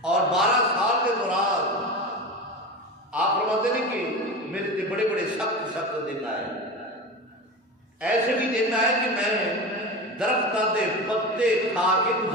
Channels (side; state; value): both; normal; correlation 0.26